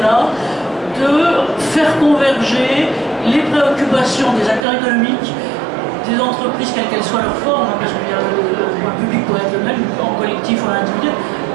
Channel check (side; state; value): left; drops out; at 4.7 s